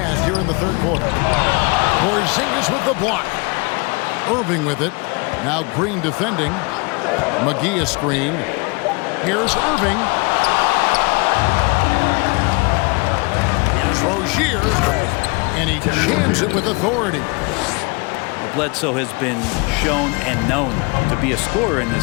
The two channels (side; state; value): right; quieter; 29.0 dB